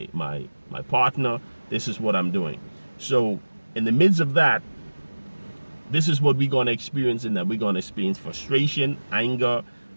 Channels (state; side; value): inverted; both; correlation -1.00